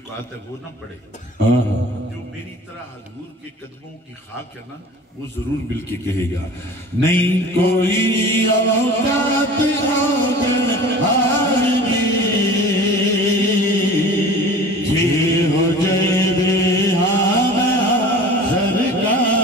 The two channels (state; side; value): normal; both; correlation 0.41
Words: ہے وہ نہ پڑے. جو میری طرح حضور کے قدموں کی خاک ہے نا وہ ضرور مل کے کہے گا. نہیں کوئی اوقات آگن آرمی جی ہو جائے بے ہاں